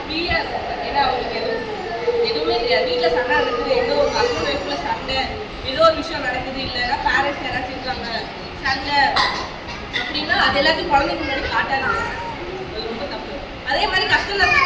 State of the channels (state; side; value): identical; both; correlation 1.00